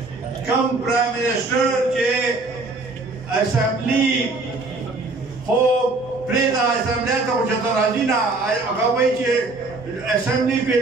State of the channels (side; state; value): left; quieter; 3.4 dB